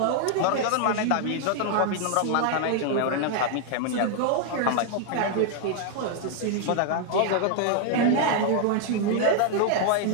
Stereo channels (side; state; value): both; different; correlation 0.00